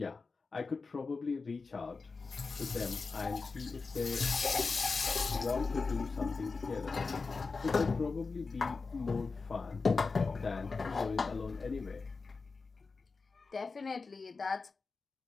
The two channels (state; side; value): quieter; right; 4.3 dB